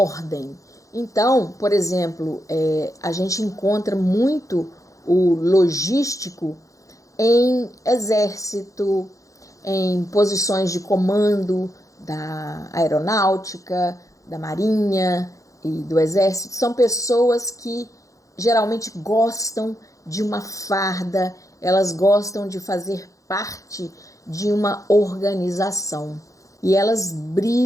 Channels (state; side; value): late; right; 0.16 ms